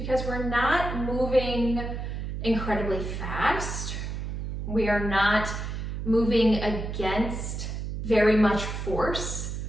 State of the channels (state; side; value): noise; right; hum, 5 dB below the sound